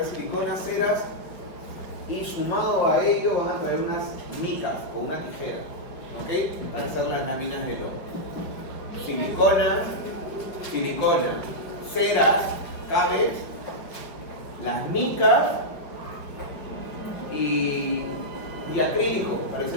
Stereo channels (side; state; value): right; late; 5.2 ms